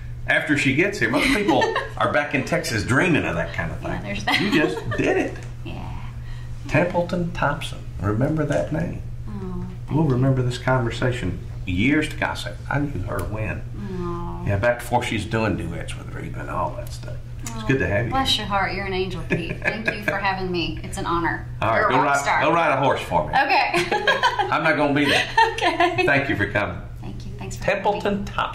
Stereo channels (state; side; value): identical; both; correlation 1.00